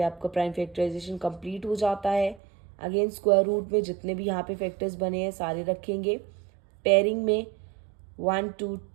आपका प्राइम फैक्टराइजेशन कंप्लीट हो जाता है। अगेन स्क्वायर रूट में जितने भी यहाँ पे फैक्टर्स बने हैं सारे रखेंगे। पेयरिंग में 1 2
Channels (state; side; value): drops out; left; at 2.4 s